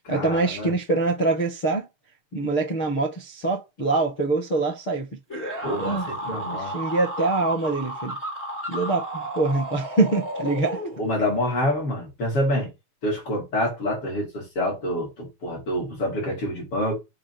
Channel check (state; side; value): late; right; 6.6 ms